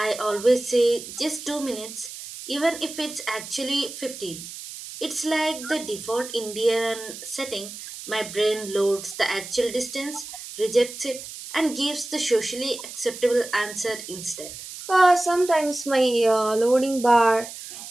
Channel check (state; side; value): noise; right; hiss, 12 dB below the sound